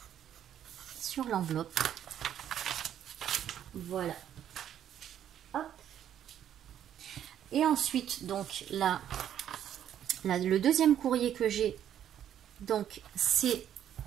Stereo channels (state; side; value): quieter; left; 10.3 dB